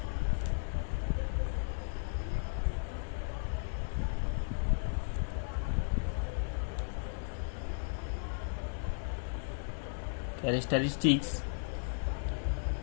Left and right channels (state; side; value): silent; right; digital silence